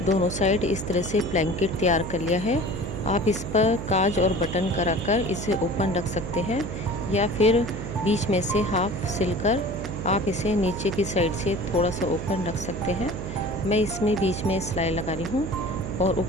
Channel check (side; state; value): right; noise; hum, 7 dB below the sound